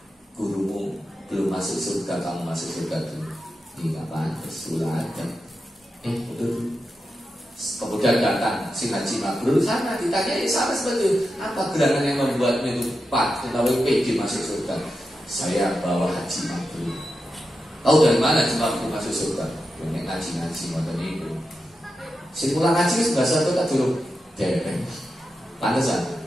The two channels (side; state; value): both; normal; correlation 0.89